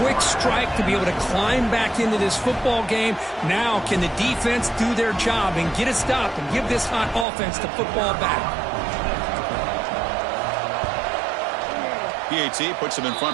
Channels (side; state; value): left; drops out; at 7.2 s